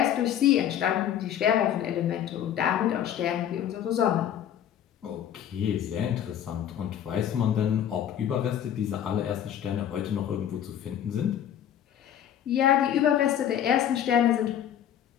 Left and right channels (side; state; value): right; quieter; 10.1 dB